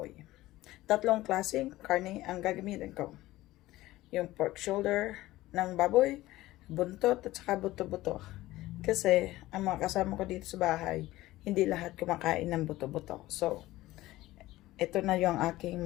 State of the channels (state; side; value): quieter; right; 17.0 dB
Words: Tatlong klaseng karne ang gagamitin ko. Yung pork shoulder ng baboy, buntot at saka buto-buto. Kasi ang mga kasama ko dito sa bahay, hindi lahat kumakain ng buto-buto. So, ito na yung aking